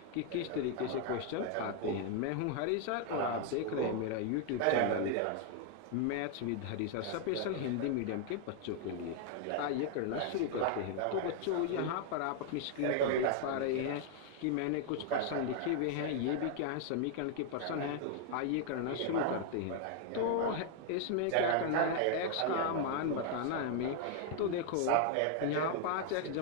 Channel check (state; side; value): different; both; correlation 0.00